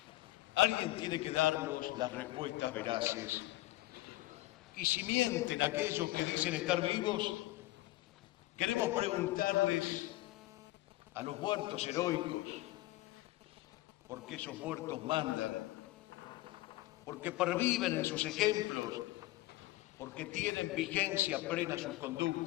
alguien tiene que darnos las respuestas veraces. Y si mienten aquellos que dicen estar vivos, queremos preguntarles a los muertos heroicos, ¿por qué esos muertos mandan? ¿Porque perviven en sus ejemplos? ¿Porque tienen vigencia plena sus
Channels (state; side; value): quieter; right; 18.2 dB